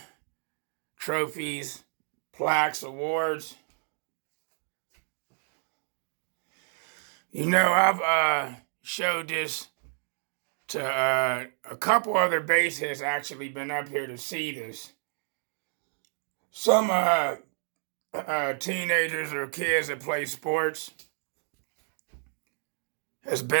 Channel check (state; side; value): silent; left; 56 dB below the other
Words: Trophies, plaques, awards. You know, I've showed this to a couple other bass heads actually been up here to see this. Some teenagers or kids that play sports has